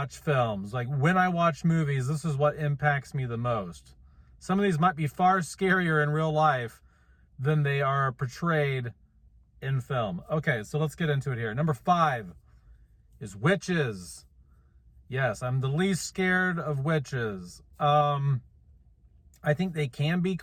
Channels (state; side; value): identical; both; correlation 1.00